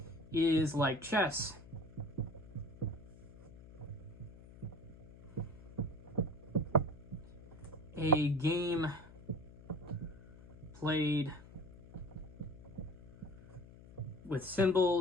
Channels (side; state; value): left; noise; hum, 18 dB below the sound